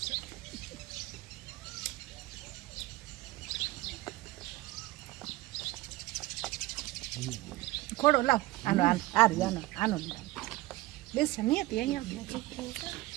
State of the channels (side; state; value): left; quieter; 18.4 dB